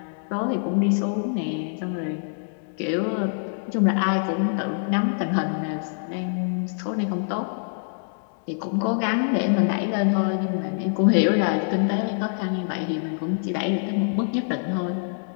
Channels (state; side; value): silent; right; digital silence